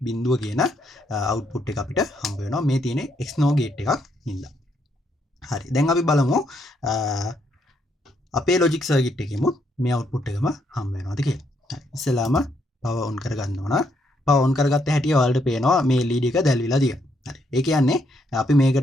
බිඳුව කියන output එක අපිට හම්බ වෙනවා මේ තියෙන XNOR gate එකක් හින්දා. හරි. දැන් අපි බලමු අපේ logic circuit එකෙමුත් මේ output එකම හම්බ වෙනවද කියලා. හරි. ඉස්සෙල්ලාම power on කරගන්න ඕන. power on කරගත්ත හැටි ඔයාලට පේනවා මේ LED එක දැල්විලා තියෙනවා. හරි. ඒ කියන්නේ අපි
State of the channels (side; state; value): both; normal; correlation 0.74